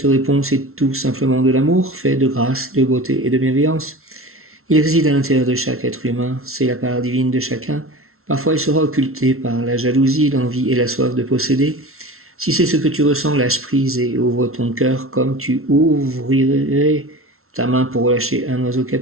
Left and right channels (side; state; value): left; late; 0.62 ms